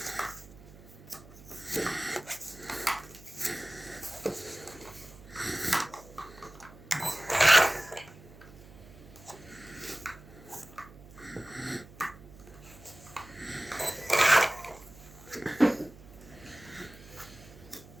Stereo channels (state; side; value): noise; right; hum, 20 dB below the sound